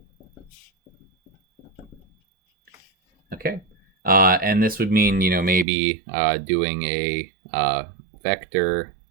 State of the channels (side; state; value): left; drops out; at 5.7 s